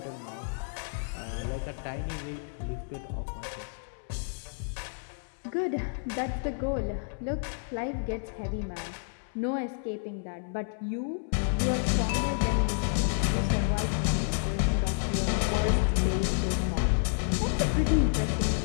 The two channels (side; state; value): right; silent; 58 dB below the other